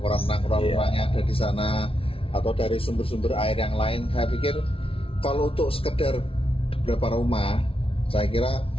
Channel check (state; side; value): late; right; 0.26 ms